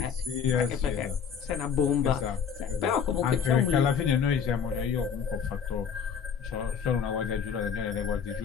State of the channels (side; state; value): right; quieter; 7.1 dB